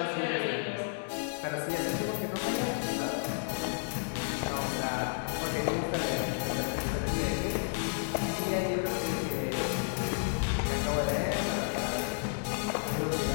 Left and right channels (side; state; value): right; silent; digital silence